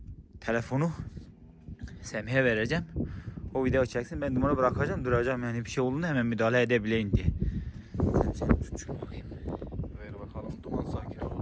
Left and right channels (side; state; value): both; identical; correlation 1.00